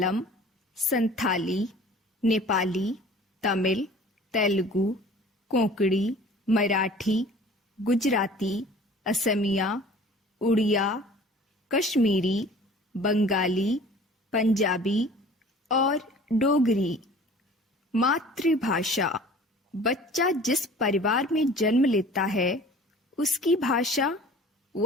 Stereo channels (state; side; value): normal; both; correlation 0.46